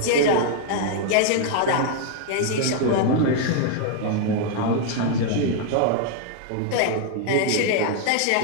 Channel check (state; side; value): different; both; correlation 0.00